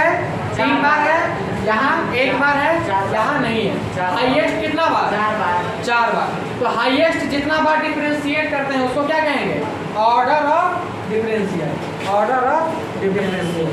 3 बार है, यहाँ 1 बार है, यहाँ नहीं है। हाईएस्ट कितना बार? 4 बार। तो हाईएस्ट जितना बार डिफरेंशिएट करते हैं उसको क्या कहेंगे? Order of differential. Order of differential.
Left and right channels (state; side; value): identical; both; correlation 1.00